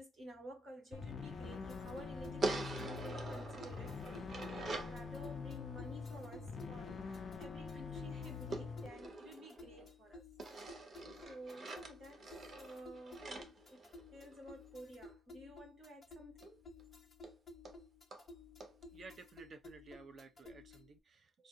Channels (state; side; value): normal; both; correlation 0.76